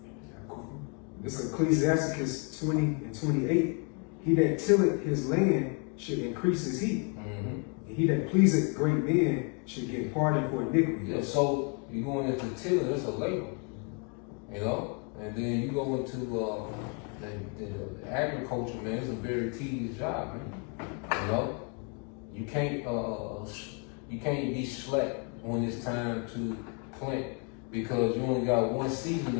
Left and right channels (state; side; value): quieter; right; 37.0 dB